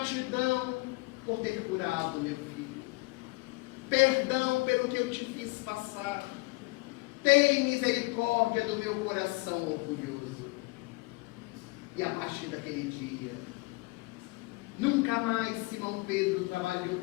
por ter curado meu filho. Perdão pelo que eu te fiz passar. Tem misericórdia do meu coração orgulhoso. E a partir daquele dia, nunca mais Simão Pedro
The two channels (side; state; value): right; quieter; 24.5 dB